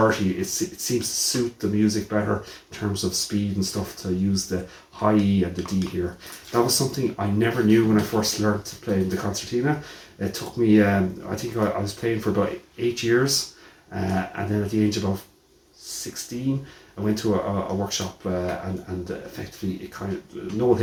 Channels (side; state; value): both; identical; correlation 1.00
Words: it seems to suit the music better in terms of speed and stuff to use the high E and the D here. That was something I never knew when I first learned to play the concertina. It took me, I think I was playing for about 8 years, and then at the age of about 16, I went to a workshop and effectively it kind of Noel